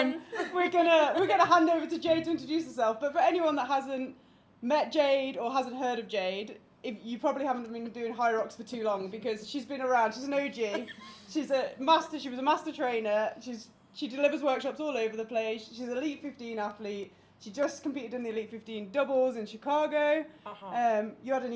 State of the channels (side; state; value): both; identical; correlation 1.00